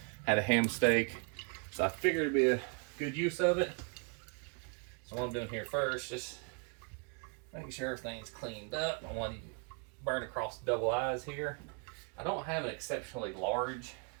a ham steak, so I figured it'd be a good use of it. So what I'm doing here first, just making sure everything's cleaned up. I want to burn across the double eyes here. I don't have an exceptionally large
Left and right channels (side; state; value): left; quieter; 39.4 dB